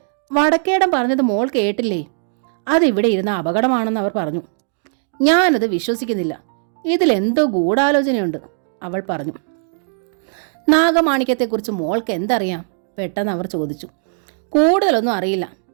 വടക്കേടം പറഞ്ഞത് മോൾ കേട്ടില്ലേ? അതിവിടെ ഇരുന്ന അപകടമാണെന്ന് അവർ പറഞ്ഞു. ഞാനത് വിശ്വസിക്കുന്നില്ല. ഇതിലെന്തോ ഗൂഢാലോചനയുണ്ട്, അവൾ പറഞ്ഞു. നാഗമാണിക്യത്തെക്കുറിച്ച് മോൾക്ക് എന്തറിയാം? പെട്ടെന്ന് അവർ ചോദിച്ചു. കൂടുതലൊന്നും അറിയില്ല.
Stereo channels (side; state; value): left; silent; digital silence